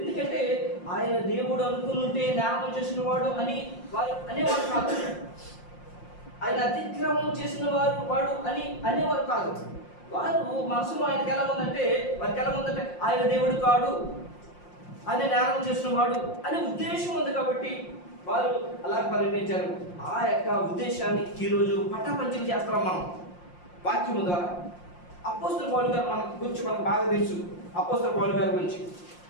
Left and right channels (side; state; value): right; late; 5.7 ms